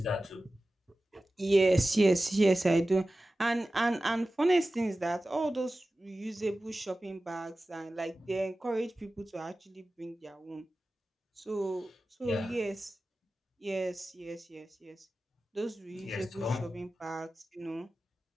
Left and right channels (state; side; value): normal; both; correlation 0.95